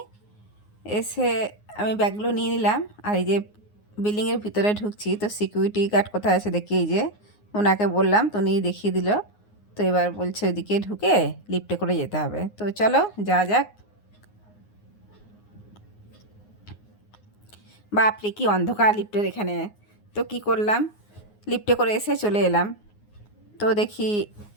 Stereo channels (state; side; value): late; right; 9.6 ms